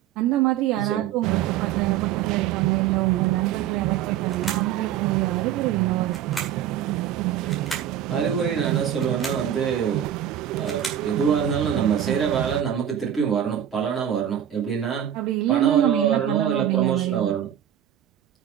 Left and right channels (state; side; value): quieter; left; 10.2 dB